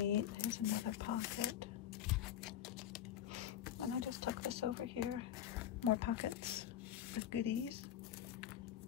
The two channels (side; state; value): right; quieter; 10.7 dB